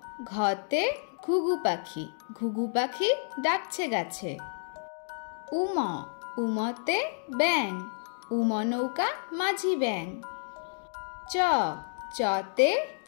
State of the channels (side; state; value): right; silent; digital silence